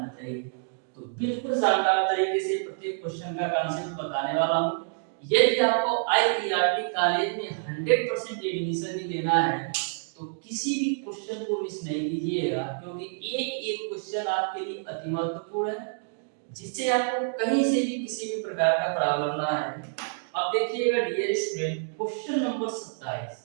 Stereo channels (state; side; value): silent; left; digital silence